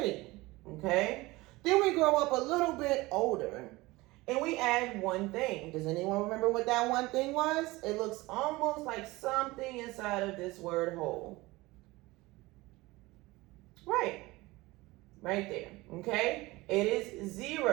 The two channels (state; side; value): quieter; left; 20.9 dB